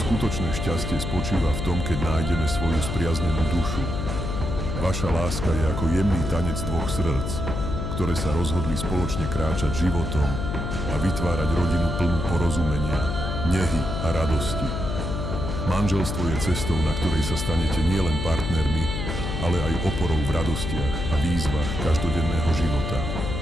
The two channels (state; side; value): noise; left; hum, 3 dB below the sound